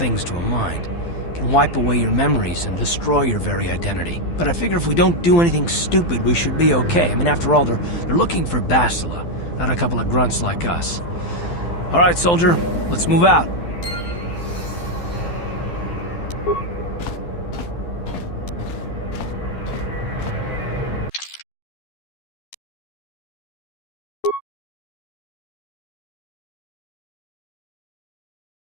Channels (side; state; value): right; late; 12 ms